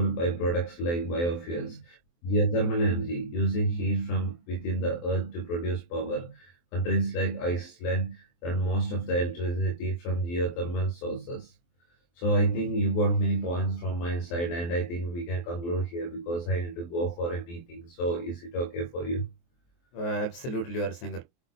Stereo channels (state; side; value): late; right; 23 ms